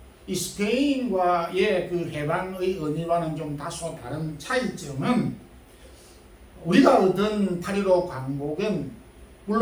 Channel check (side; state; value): both; identical; correlation 1.00